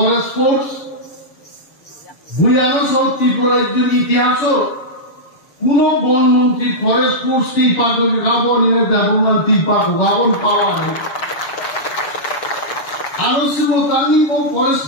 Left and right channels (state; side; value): late; right; 6.9 ms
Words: ফোর্স বুয়ানো সব ত্রিপুরার ইতিহাস কোন বনমন্ত্রী ফরেস্ট ফোর্স ত্রিপাক গাবনের ব্যবহার ত্রিপাক গাবন পাওয়া হয় আলোচনা তানি ফরেস্ট